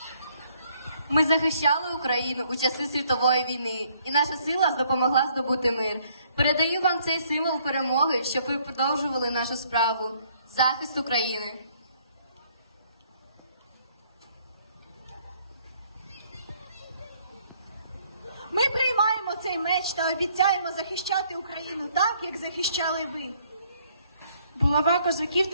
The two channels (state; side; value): inverted; both; correlation -0.65